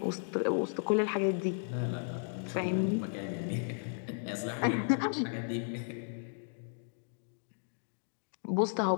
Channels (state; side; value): silent; right; digital silence